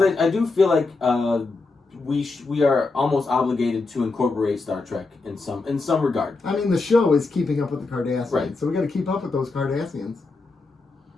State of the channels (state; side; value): quieter; right; 3.7 dB